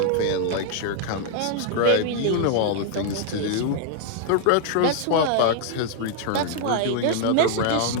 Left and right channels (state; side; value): different; both; correlation 0.00